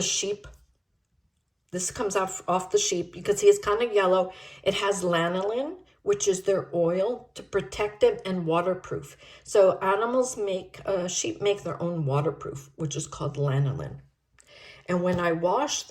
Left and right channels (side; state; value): both; identical; correlation 1.00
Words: sheep. This comes off the sheep. You can see it's kind of yellow. It has lanolin, which is their oil to protect it and waterproof. So animals sheep make their own waterproof, which is called lanolin. And when I wash